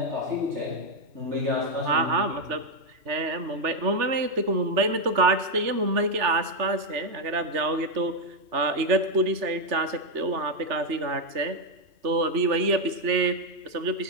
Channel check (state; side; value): late; left; 3.3 ms